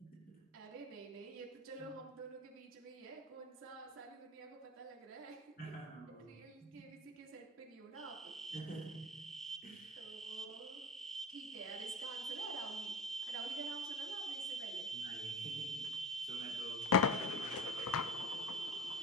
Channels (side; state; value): both; normal; correlation 0.33